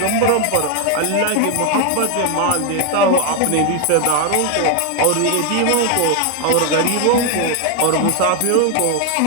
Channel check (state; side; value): different; both; correlation 0.01